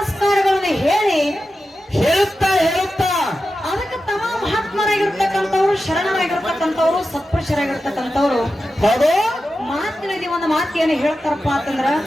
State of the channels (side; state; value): both; normal; correlation 0.92